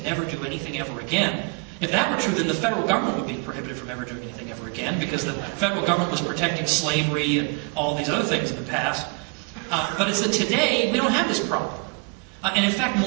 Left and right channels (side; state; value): left; quieter; 30.7 dB